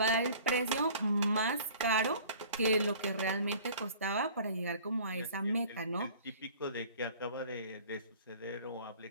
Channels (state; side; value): inverted; both; correlation -0.48